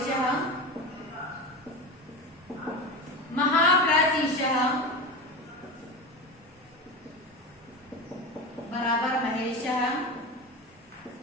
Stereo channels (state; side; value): normal; both; correlation 0.24